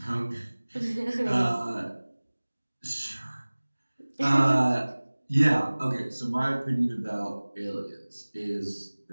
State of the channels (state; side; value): inverted; both; correlation -1.00